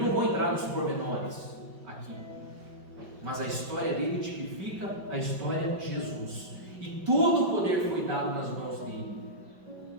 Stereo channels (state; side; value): late; left; 5.2 ms